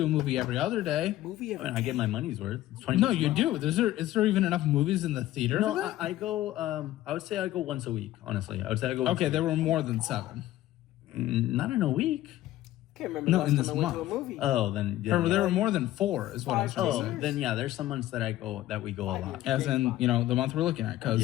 a movie every other day. Movie I mean, I get my money's worth. It's 20 No, bucks a you month. do. Is there even enough movies in the theater? No, for that? I go. I would say I go once a week. Honestly, I would say I go. Once Okay, a there week. were more than 7. Not in a week. Can't remember No, the last in time this I went to a month. movie. Oh, then yeah. Or there were more than 4, is what I was trying to Oh, say. then yeah. There's some months that we go a lot. As in, the month we're looking at, because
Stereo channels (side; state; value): right; quieter; 14.7 dB